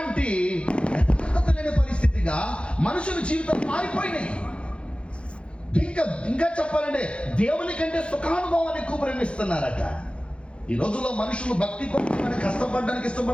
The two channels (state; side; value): late; right; 0.058 ms